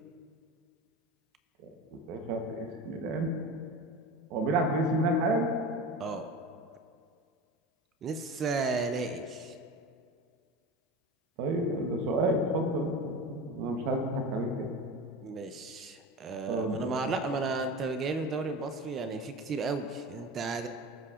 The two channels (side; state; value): both; normal; correlation 0.31